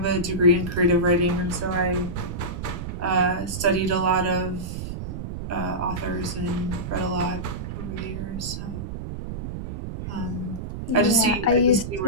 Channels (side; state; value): right; noise; rumble, 7 dB below the sound